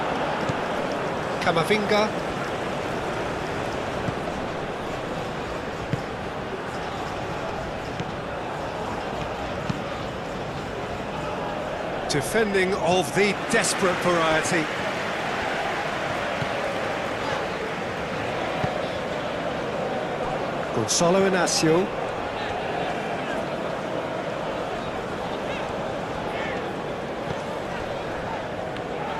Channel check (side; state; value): both; identical; correlation 1.00